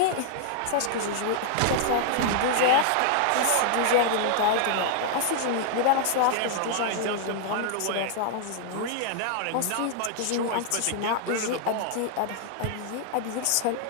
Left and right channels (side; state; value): both; different; correlation -0.01